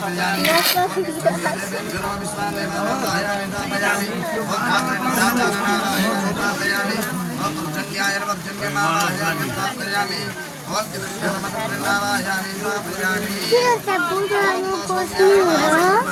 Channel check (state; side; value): identical; both; correlation 1.00